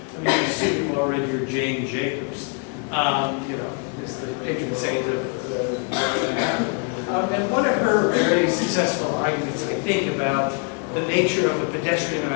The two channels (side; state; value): right; quieter; 38.3 dB